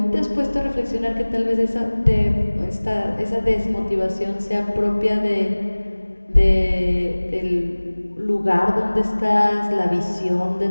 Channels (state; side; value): inverted; both; correlation -1.00